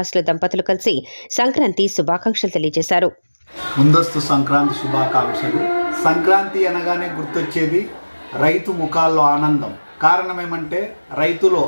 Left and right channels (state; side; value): inverted; both; correlation -1.00